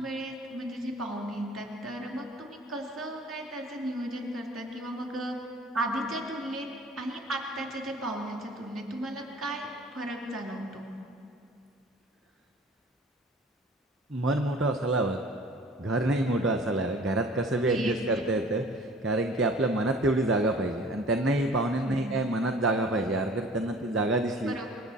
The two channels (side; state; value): both; normal; correlation 0.47